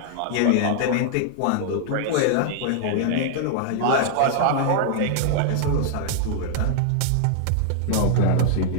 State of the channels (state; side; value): different; both; correlation -0.01